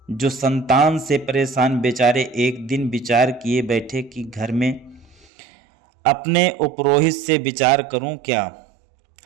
जो संतान से परेशान बेचारे एक दिन विचार किए बैठे कि घर में अपने उपरोहित से विचार करूं क्या,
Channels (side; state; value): left; drops out; at 5.2 s